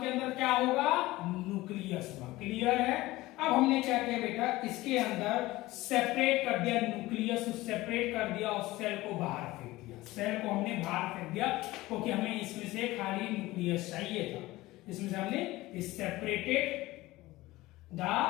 अंदर क्या होगा, न्यूक्लियस होगा, क्लियर है। अब हमने क्या किया बेटा, इसके अंदर सेपरेट कर दिया, न्यूक्लियस सेपरेट कर दिया और सेल को बाहर फेंक दिया, सेल को हमने बाहर फेंक दिया क्योंकि हमें इसमें से खाली न्यूक्लियस चाहिए था। इसमें से हमने सेपरेटेड द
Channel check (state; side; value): quieter; right; 18.6 dB